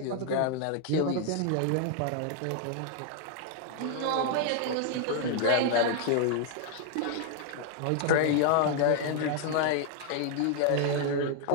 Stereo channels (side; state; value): both; different; correlation 0.00